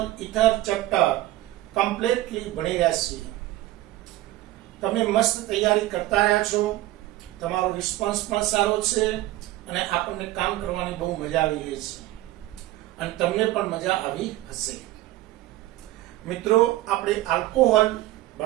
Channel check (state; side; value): quieter; left; 16.1 dB